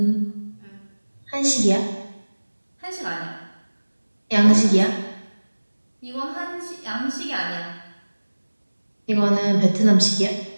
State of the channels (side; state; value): both; inverted; correlation -1.00